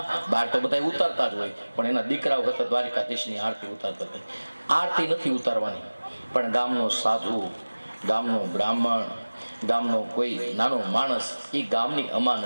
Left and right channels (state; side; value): inverted; both; correlation -1.00